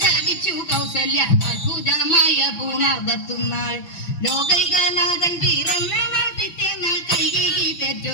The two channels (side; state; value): right; late; 5.9 ms